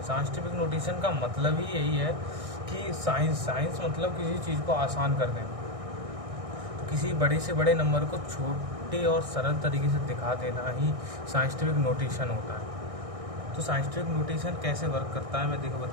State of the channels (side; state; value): left; late; 1.6 ms